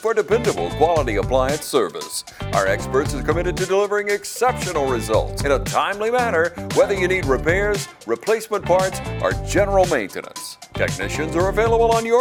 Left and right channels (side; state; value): both; identical; correlation 1.00